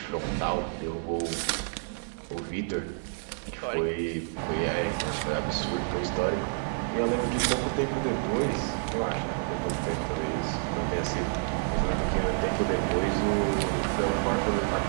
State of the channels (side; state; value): left; silent; digital silence